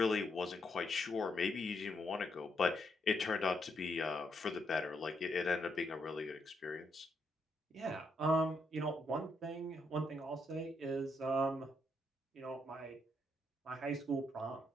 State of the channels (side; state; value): both; normal; correlation 0.77